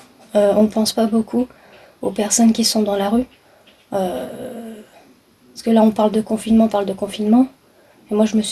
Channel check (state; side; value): identical; both; correlation 1.00